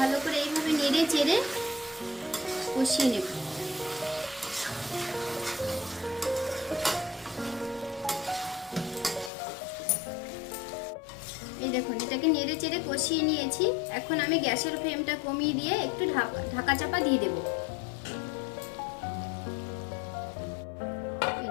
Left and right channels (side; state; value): right; drops out; at 9.3 s